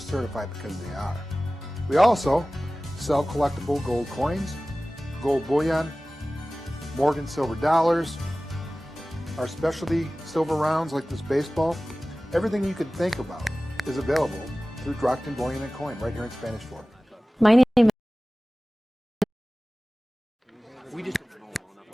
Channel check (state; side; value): normal; both; correlation 0.97